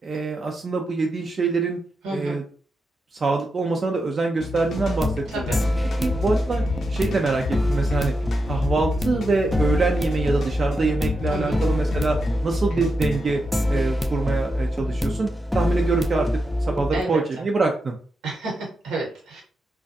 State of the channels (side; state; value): both; normal; correlation 0.86